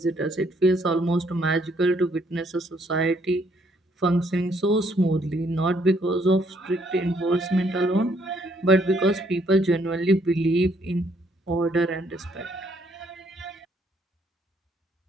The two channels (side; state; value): both; normal; correlation 0.68